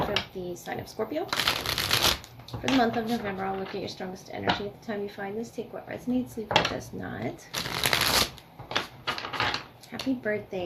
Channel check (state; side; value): identical; both; correlation 1.00